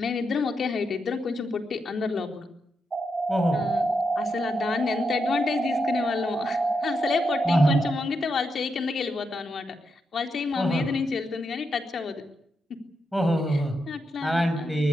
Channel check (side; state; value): both; normal; correlation 0.84